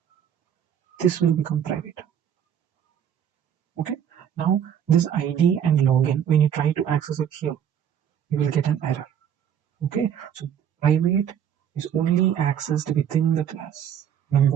this will become private. Okay, now this id and login, when you try to access it here, you will get an error. Okay, so private is only accessed within the class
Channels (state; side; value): quieter; left; 9.1 dB